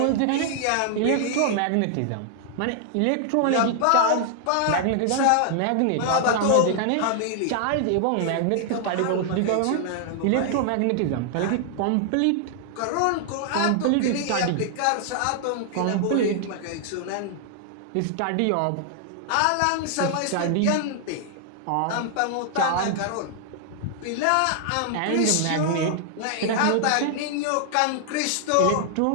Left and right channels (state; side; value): different; both; correlation 0.00